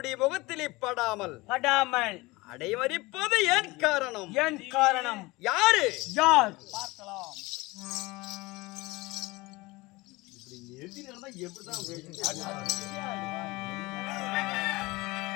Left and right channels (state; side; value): quieter; right; 22.1 dB